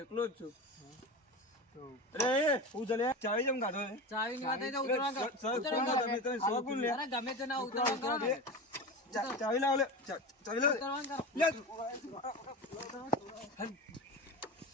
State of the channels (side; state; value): both; normal; correlation 0.26